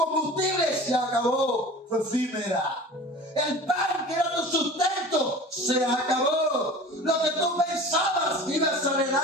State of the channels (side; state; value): both; normal; correlation 0.39